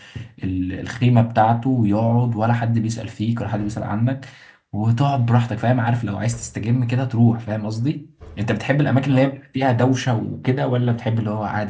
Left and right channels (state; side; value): identical; both; correlation 1.00